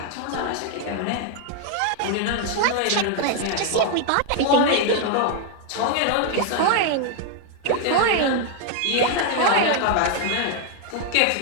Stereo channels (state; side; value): different; both; correlation 0.00